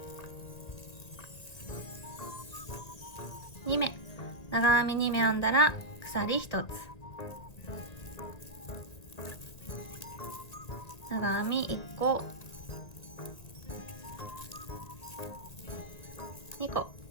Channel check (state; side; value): late; right; 1.9 ms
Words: 2目、長編み2目編んだら鎖1つ、長編み1個、2個、